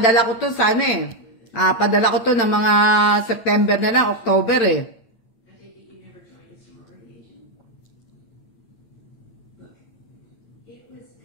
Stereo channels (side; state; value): right; late; 8.8 ms